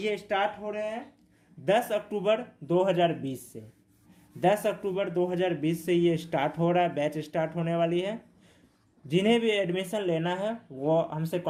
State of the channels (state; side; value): identical; both; correlation 1.00